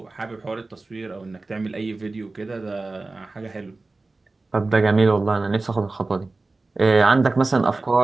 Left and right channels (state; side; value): quieter; left; 3.4 dB